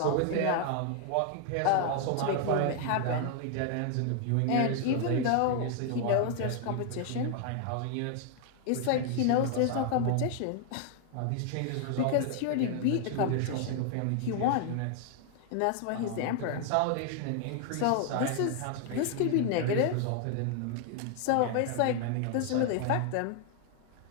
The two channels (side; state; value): both; different; correlation 0.00